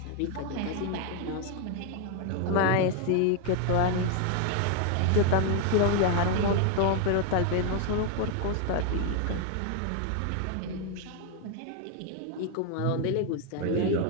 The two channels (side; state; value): both; different; correlation 0.01